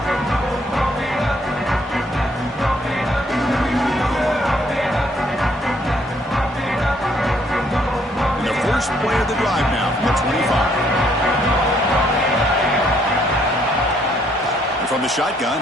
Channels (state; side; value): normal; both; correlation 0.67